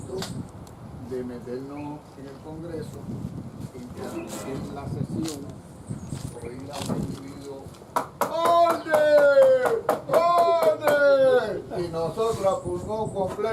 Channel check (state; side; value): identical; both; correlation 1.00